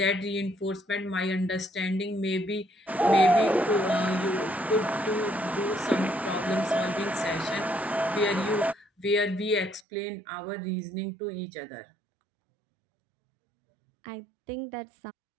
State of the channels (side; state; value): left; drops out; at 9.8 s